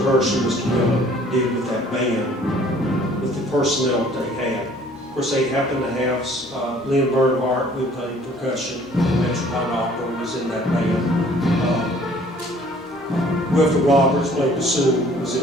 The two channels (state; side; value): normal; both; correlation 0.55